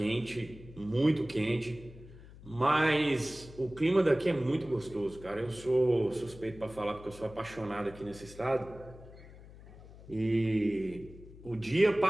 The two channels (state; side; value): noise; left; hum, 18 dB below the sound